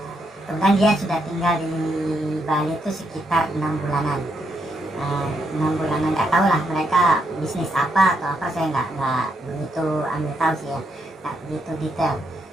Kemudian dia sudah tinggal di Bali itu sekitar 6 bulanan. 6 bulanan, nggak tahu lah mereka bisnis apa atau apa, saya nggak begitu ambil tahu sih ya, nggak begitu detail.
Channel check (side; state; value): both; normal; correlation 0.78